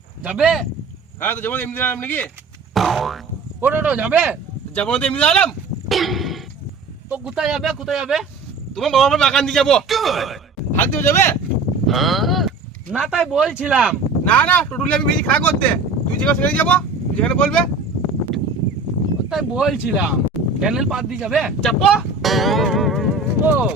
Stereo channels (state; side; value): quieter; left; 3.8 dB